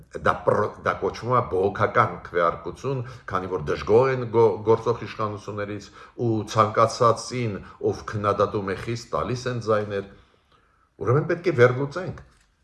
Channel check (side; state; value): both; identical; correlation 1.00